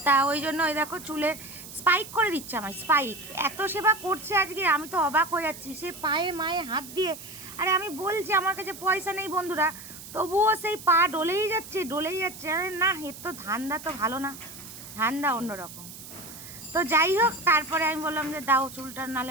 তা ওই জন্য ওই দেখো চুলে স্পাইক করে দিচ্ছে আমার, স্পাইক। এত সেবা করছে আজকে, আমি তো অবাক হয়ে যাচ্ছি, সে পায়ে মায়ে হাত দিয়ে। আরে আমি বলছি আমার কাছে পয়সা নেই বন্ধুরা, তবুও সেই পা ডলেই যাচ্ছে। আরে না, এর তো ধান্দা তো ভালো না, ধান্দা অন্যরকম। তো যাই হোক, তারপরে আমি বললাম যে দাও চুলটা, নালে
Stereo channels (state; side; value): noise; right; hiss, 14 dB below the sound